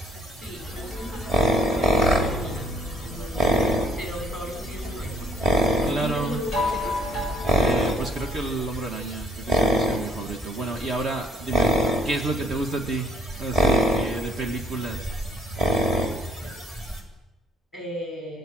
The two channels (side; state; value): both; normal; correlation 0.60